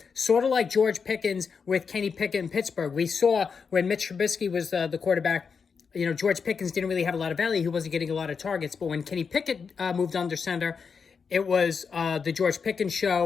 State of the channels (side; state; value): right; quieter; 5.8 dB